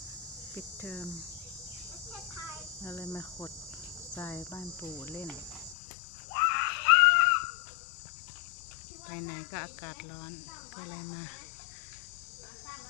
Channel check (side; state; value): right; drops out; at 5.8 s